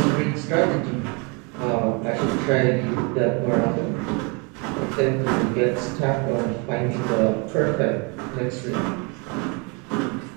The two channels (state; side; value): quieter; left; 32.0 dB